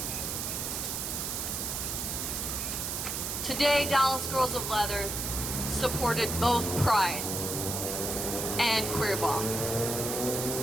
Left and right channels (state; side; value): noise; right; hiss, 2 dB below the sound